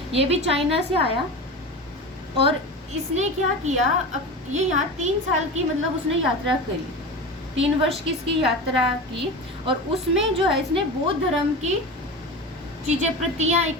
ये भी चाइना से आया। और इसने क्या किया? ये यहाँ 3 साल की मतलब उसने यात्रा करी, 3 वर्ष की इसकी यात्रा की। और उसमें जो है इसने बौद्ध धर्म की चीजें, प्रतियां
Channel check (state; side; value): normal; both; correlation 0.28